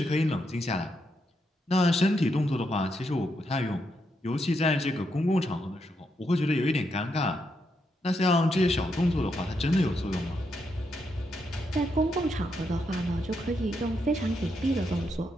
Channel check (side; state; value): both; normal; correlation 0.80